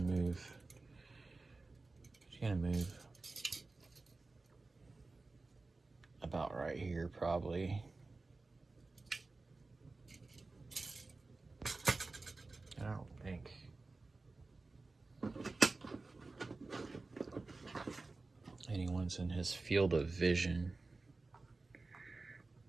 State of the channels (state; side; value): quieter; left; 3.5 dB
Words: move. He's gonna move about right here, probably. I don't think. Anyone's in his field of vision.